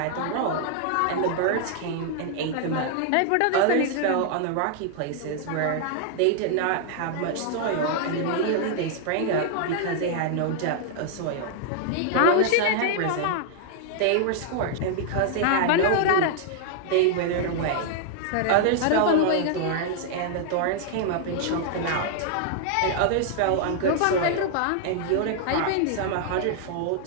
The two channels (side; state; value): both; different; correlation 0.00